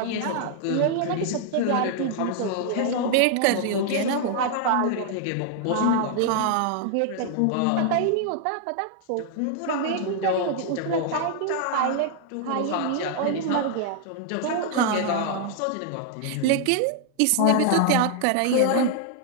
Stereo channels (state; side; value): different; both; correlation 0.00